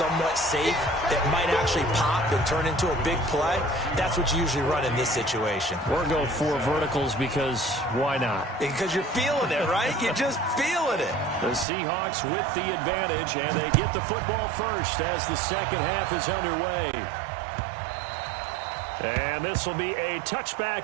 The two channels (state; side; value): drops out; left; at 11.7 s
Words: safe that might actually pop and turn into a big play. That's what you usually run in this situation. Or go 4 verticals because why not? Because you're feeling it, right? You're just feeling it. The Seahawks with the advantage, and they get the football first as the second half is underway. And this will be a